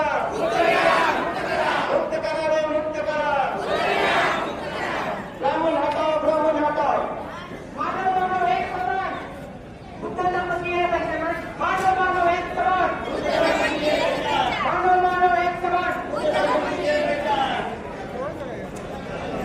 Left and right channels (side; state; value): both; identical; correlation 1.00